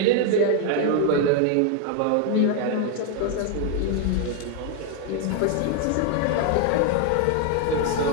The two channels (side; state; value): both; different; correlation 0.01